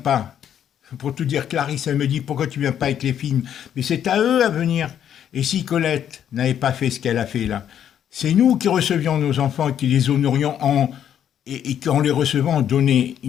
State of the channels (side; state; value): right; quieter; 9.6 dB